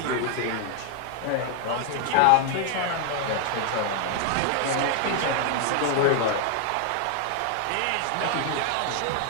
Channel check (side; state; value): both; different; correlation 0.00